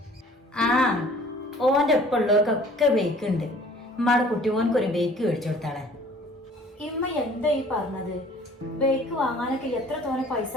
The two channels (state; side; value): normal; both; correlation 0.52